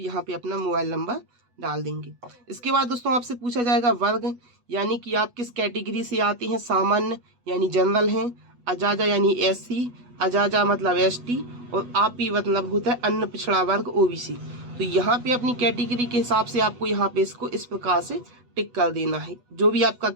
पे अपना मोबाइल नंबर डाल देंगे। इसके बाद दोस्तों आपसे पूछा जाएगा वर्ग, यानी कि आप किस कैटेगरी से आते हैं। सामान्य यानी जनरल हैं, अजाजा यानी एससी, अजाजा मतलब एसटी, और आपी मतलब होता है अन्य पिछड़ा वर्ग ओबीसी। तो यहाँ पे अपनी कैटेगरी के हिसाब से आपको यहाँ पे इसको इस प्रकार से टिक कर देना है। जो भी आपका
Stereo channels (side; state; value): left; late; 8.2 ms